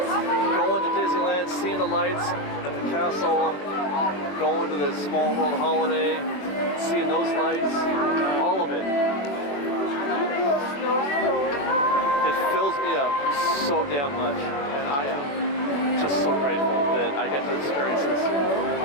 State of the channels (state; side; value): late; right; 21 ms